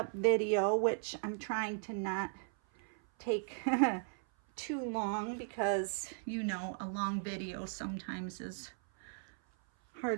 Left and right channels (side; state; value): left; silent; 53 dB below the other